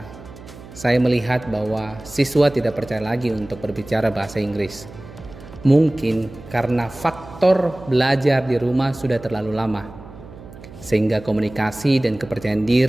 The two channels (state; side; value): noise; right; hum, 17 dB below the sound